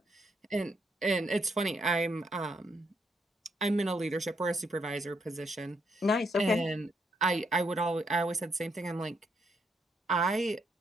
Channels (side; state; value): both; normal; correlation 0.76